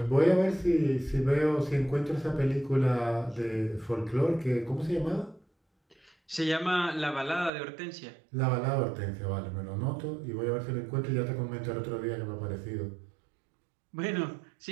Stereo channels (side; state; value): left; drops out; at 7.5 s